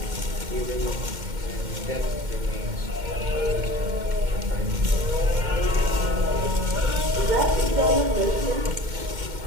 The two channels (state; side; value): late; left; 2.1 ms